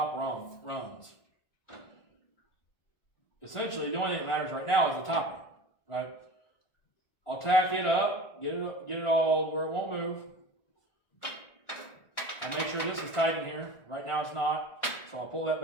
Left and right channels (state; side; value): late; right; 1.5 ms